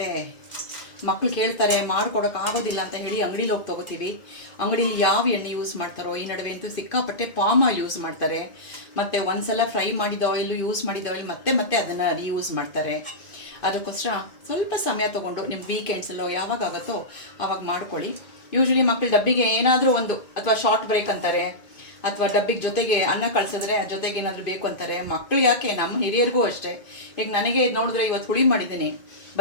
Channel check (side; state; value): right; late; 2.1 ms